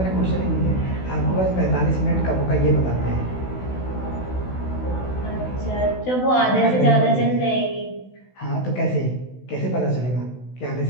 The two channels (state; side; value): late; right; 16 ms